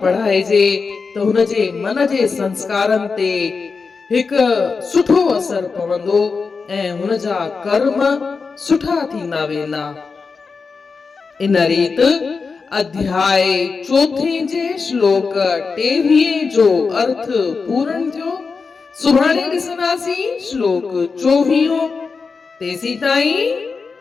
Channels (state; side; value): quieter; right; 4.8 dB